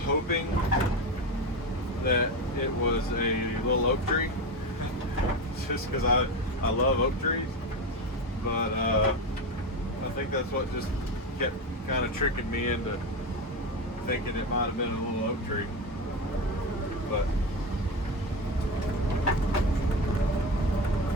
hoping that it was a little oak tree, just because I love oak trees. But I think that's what just kept kind of tricking me into thinking it might have been a little oak tree. But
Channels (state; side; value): normal; both; correlation 0.19